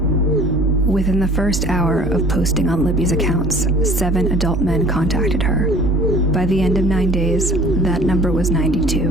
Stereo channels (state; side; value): normal; both; correlation 0.49